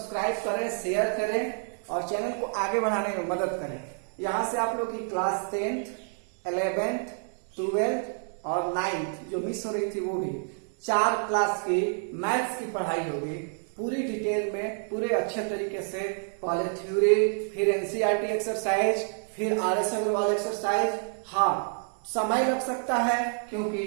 करें, शेयर करें और चैनल को आगे बढ़ाने में मदद करें। यहाँ से आप लोग की क्लास 10th, 11th, 12th और 9th जो मिस हो रही थी वो भी 4 क्लास की मैथ्स की पढ़ाई होगी पूरी डिटेल में, पूरे अच्छे तरीके से। पहले थ्योरी, फिर एनसीईआरटी एक्सरसाइज, फिर आरएस अग्रवाल एक्सरसाइज। हाँ, समय लग सकता है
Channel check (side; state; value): left; silent; 59 dB below the other